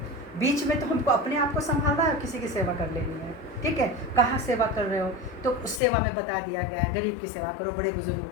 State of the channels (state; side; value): drops out; right; at 5.8 s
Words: बीच में तो हमको अपने आप को संभालना है और किसी की सेवा कर लेनी है। ठीक है, कहाँ सेवा कर रहे हो तो उस सेवा में बता दिया गया है, गरीब की सेवा करो, बड़े बुजुर्गों